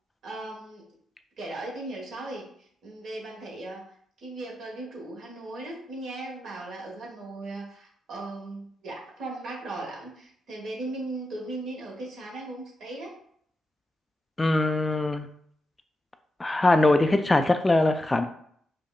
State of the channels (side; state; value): both; normal; correlation 0.90